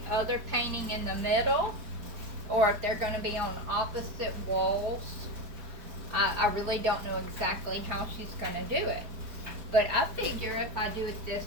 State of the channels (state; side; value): late; left; 4.7 ms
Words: other painting in the middle, or if they're going to be on opposite walls. I really don't know exactly how she's going to do it, but I figure if I do it this